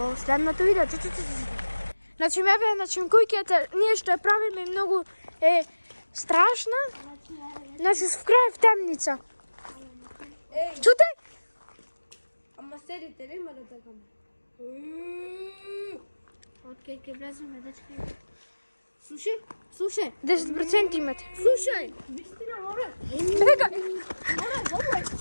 следното видео. Значи, значи, куќата, ние што ја правиме многу е страшна. Значи, в крај в темница. Чуте? Ама седите, нема да бегаме. Откај ќе влеземе, дечки. Слушај. 10% имате. Слушај. Бегај!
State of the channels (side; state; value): both; inverted; correlation -1.00